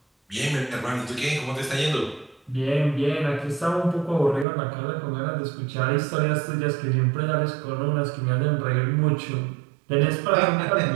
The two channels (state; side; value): drops out; left; at 4.5 s